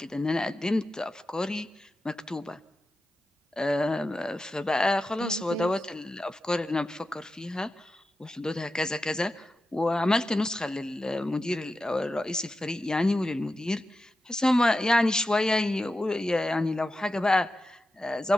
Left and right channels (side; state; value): both; normal; correlation 0.91